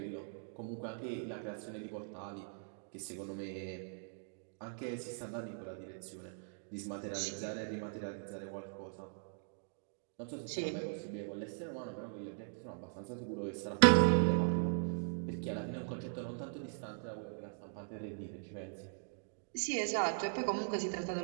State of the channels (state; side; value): silent; left; digital silence